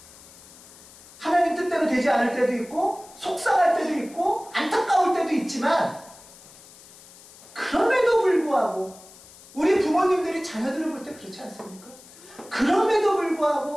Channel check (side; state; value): left; noise; hiss, 21 dB below the sound